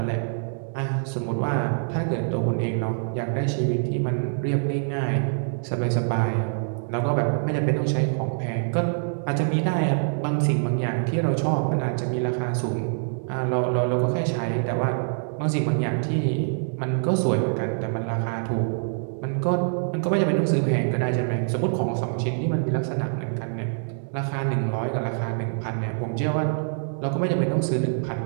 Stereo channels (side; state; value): left; silent; digital silence